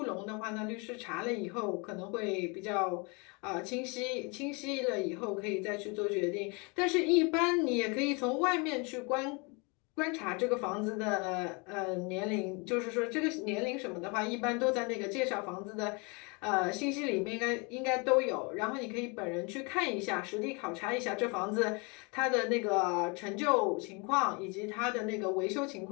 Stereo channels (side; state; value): right; quieter; 30.6 dB